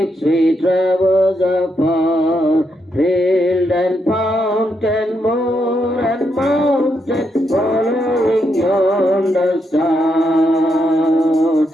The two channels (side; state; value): both; normal; correlation 0.80